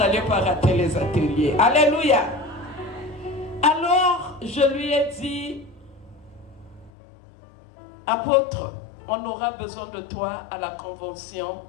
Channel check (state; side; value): drops out; right; at 6.9 s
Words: pas rater les ateliers. Alléluia. Alors, je lui ai dit, apôtre, on aura besoin de toi à la convention